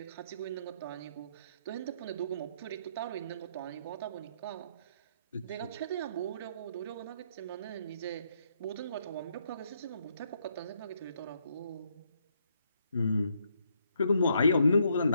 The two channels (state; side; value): inverted; both; correlation -0.73